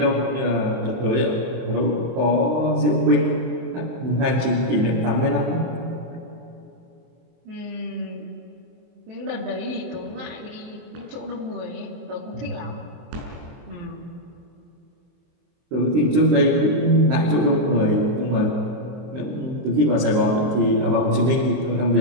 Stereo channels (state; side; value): late; left; 24 ms